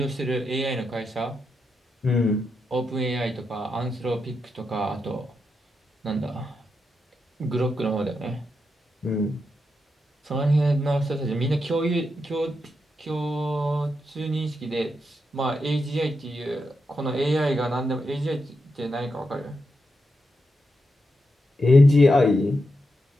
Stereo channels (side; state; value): both; normal; correlation 0.85